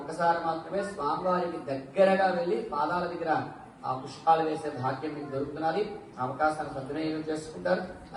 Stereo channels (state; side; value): identical; both; correlation 1.00